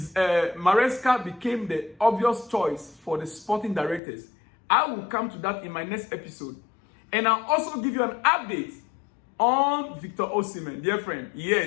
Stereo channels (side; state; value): right; drops out; at 4.0 s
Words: Maresca became the obvious choice for the sporting directors. I will come to that in my next episode. And I'll also give you an update on Victor Osimhen, dear friend.